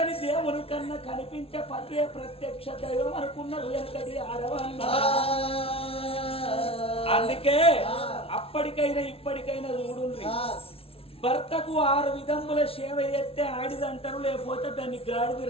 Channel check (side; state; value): right; late; 0.27 ms